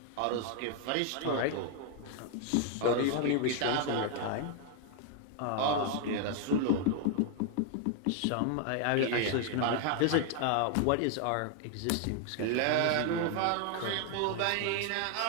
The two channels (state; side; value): different; both; correlation 0.00